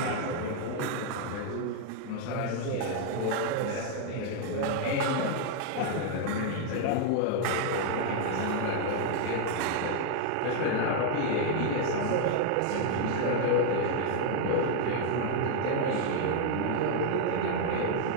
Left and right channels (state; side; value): different; both; correlation 0.00